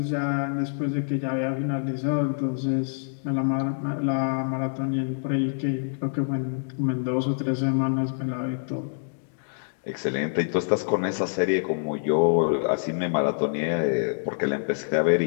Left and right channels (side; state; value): right; silent; digital silence